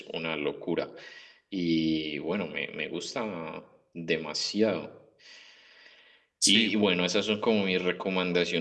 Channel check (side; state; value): both; identical; correlation 1.00